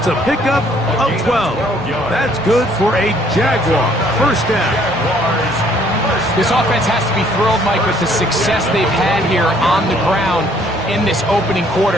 a pickup of 12. That's good for a Jaguar. First down. This offense has to be thrilled, Mike, with the success they've had here on the ground in this opening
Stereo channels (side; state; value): both; normal; correlation 0.62